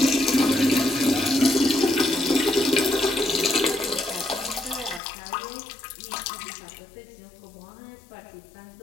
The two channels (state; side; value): drops out; right; at 5.0 s